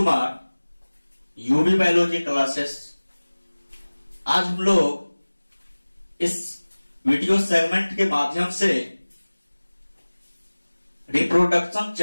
UB biology classes. आज हम लोग इस वीडियो सेगमेंट के माध्यम से रिप्रोडक्शन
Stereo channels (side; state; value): both; inverted; correlation -1.00